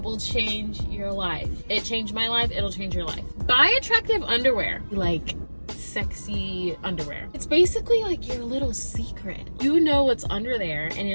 will change your life. It changed my life, it'll change your life. Buy attractive underwear, like sexy underwear. It's basically like your little secret. You know what's under there and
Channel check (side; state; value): both; inverted; correlation -1.00